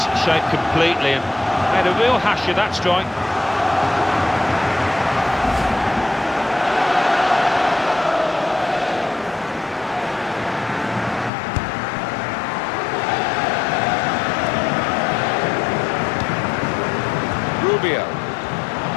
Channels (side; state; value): right; drops out; at 11.3 s